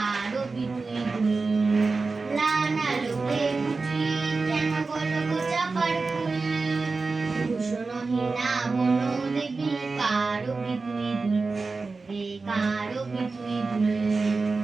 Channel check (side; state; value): left; quieter; 4.0 dB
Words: বিধুই লানা লোকে বুঝি কেন গলক চাপার ফুল। ভূষণহীনা বন দেবী কারো বিধুই কারো বিধুই